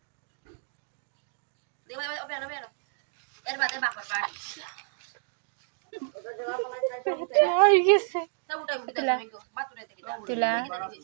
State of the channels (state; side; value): silent; left; 58 dB below the other